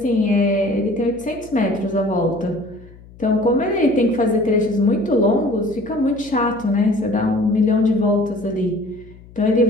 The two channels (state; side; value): noise; left; hum, 22 dB below the sound